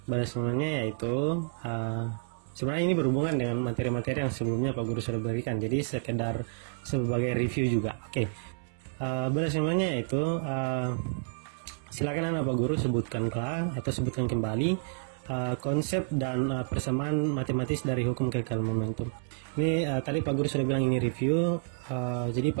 Bel assignment-nya yaitu sebenarnya ini berhubungan dengan materi-materi yang sebelumnya Pak Guru sudah berikan. Jadi sekedar sebagai review juga. Oke. Bel assignment-nya yaitu silakan anak Pak Guru sebutkanlah atau sebutkan kembali konsep dan persamaan matematis dari hukum kekekalan momentum. Ini tadi Pak Guru sudah bilang ini review, jadi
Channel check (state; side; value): silent; left; 58 dB below the other